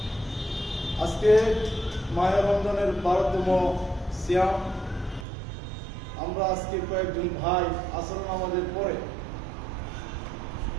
আজকে মাহে রমজানের 12তম সিয়াম। আমরা আজকে কয়েকজন ভাই আসর নামাজের পরে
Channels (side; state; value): left; drops out; at 5.2 s